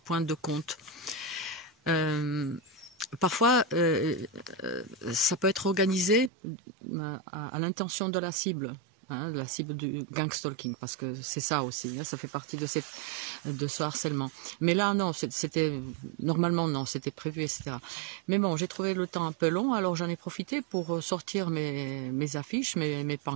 de Comte. Parfois, ça peut être organisé à l'intention de la cible, hein, de la cible du gang stalking, parce que c'est ça aussi, hein, ça fait partie de ce harcèlement. Mais là, non, normalement, non, c'était prévu, etc. Mais bon, j'ai trouvé le temps un peu long, alors j'en ai profité pour sortir mes affiches, mes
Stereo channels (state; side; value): drops out; left; at 6.3 s